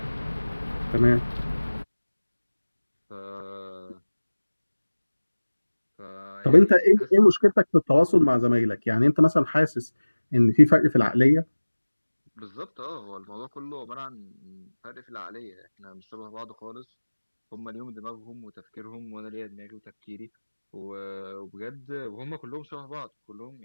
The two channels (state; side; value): inverted; both; correlation -1.00